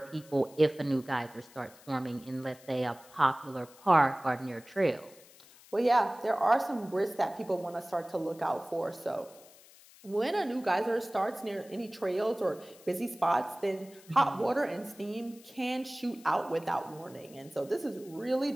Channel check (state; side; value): noise; left; hiss, 23 dB below the sound